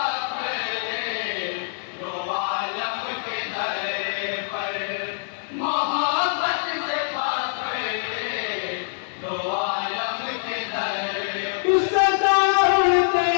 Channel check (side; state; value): right; silent; 62 dB below the other